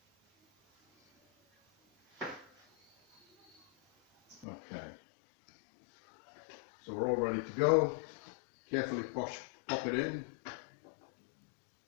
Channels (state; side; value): drops out; right; at 4.5 s